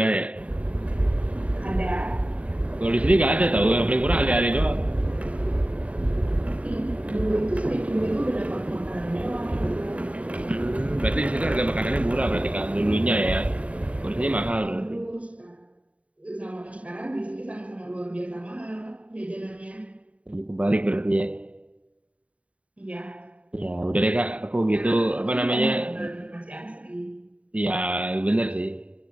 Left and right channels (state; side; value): late; left; 0.065 ms